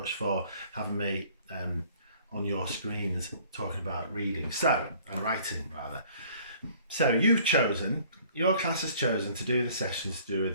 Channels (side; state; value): both; inverted; correlation -0.55